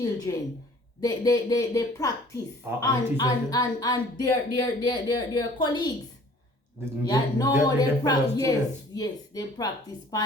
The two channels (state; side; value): normal; both; correlation 0.52